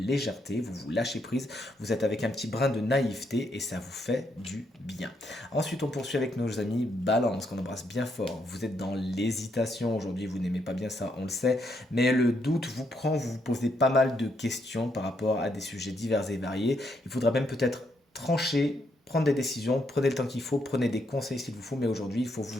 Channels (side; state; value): both; normal; correlation 0.76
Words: Vous vous lâchez prise, vous êtes avec un petit brin de naïveté et ça vous fait du bien. Ensuite, on poursuit avec nos amis Balance, qu'on embrasse bien fort. Vous êtes dans l'hésitation aujourd'hui, vous n'aimez pas bien ça, on le sait, mais le doute vous prend, vous vous posez pas mal de questions par rapport à des sujets divers et variés. Il faudra même peut-être trancher, prendre des décisions, prenez le temps qu'il faut, prenez des conseils s'il vous faut, mais aujourd'hui, il faut vous